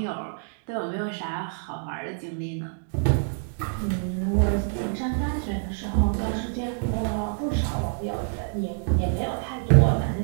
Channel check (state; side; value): silent; left; digital silence